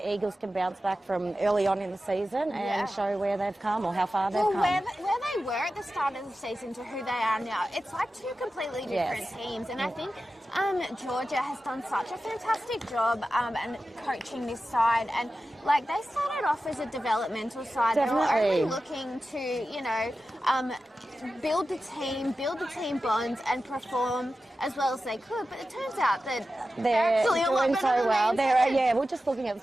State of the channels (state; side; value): normal; both; correlation 0.93